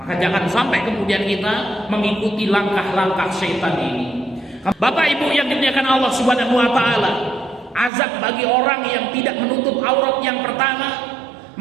jangan sampai kemudian kita mengikuti langkah-langkah syaitan ini. Bapak Ibu yang dimuliakan Allah Subhanahu wa taala, azab bagi orang yang tidak menutup aurat yang pertama,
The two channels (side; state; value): left; drops out; at 7.9 s